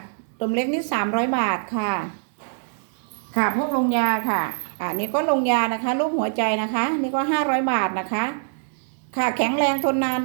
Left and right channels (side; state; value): left; silent; digital silence